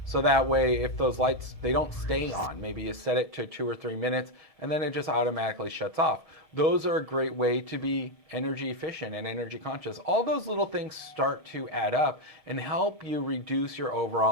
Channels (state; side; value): late; right; 1.7 ms